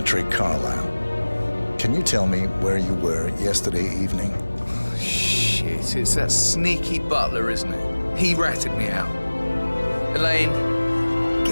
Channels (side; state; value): both; inverted; correlation -1.00